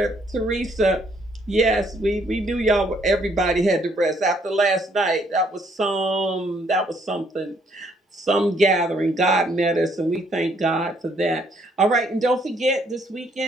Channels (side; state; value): both; normal; correlation 0.67